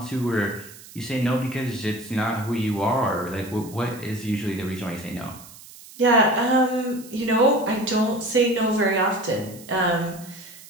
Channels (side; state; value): right; noise; hiss, 19 dB below the sound